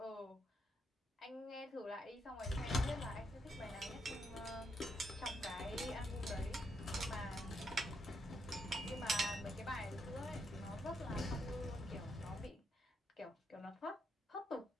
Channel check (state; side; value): normal; both; correlation 0.78